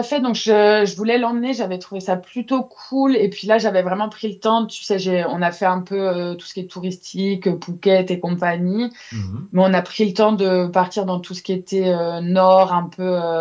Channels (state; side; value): identical; both; correlation 1.00